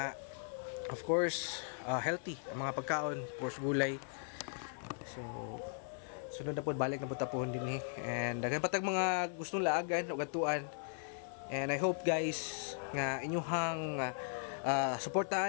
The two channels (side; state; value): right; silent; 52 dB below the other